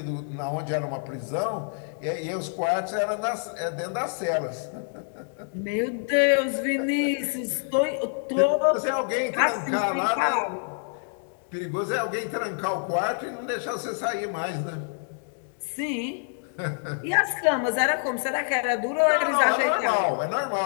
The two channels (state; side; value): silent; right; 60 dB below the other